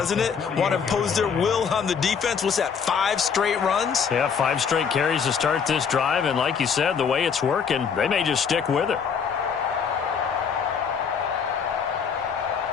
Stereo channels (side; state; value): right; quieter; 6.6 dB